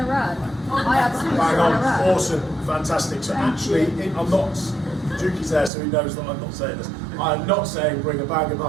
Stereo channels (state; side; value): drops out; left; at 5.7 s